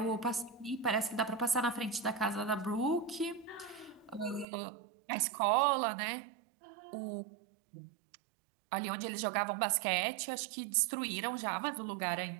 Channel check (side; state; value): left; drops out; at 4.5 s